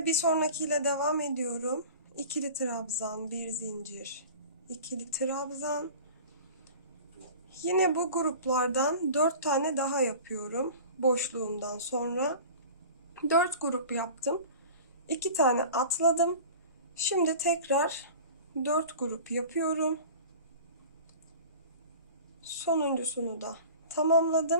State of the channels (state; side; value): inverted; both; correlation -0.38